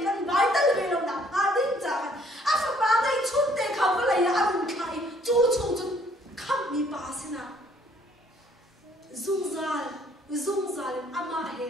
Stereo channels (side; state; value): both; normal; correlation 0.62